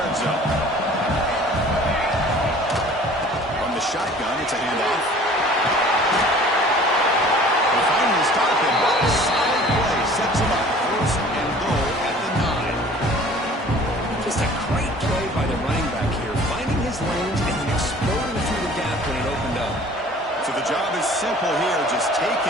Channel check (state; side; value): normal; both; correlation 0.49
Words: zone. From the shotgun, it's a handoff. They finally stop him. What a solid play. Sets him up. First and goal at the 9. Just a great play by the running back here, finding his lanes and then exploding through the gap when it opened up. So the job is simple here. Just take